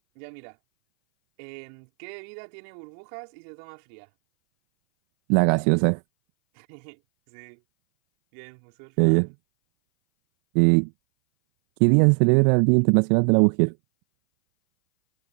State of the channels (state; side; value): silent; left; 60 dB below the other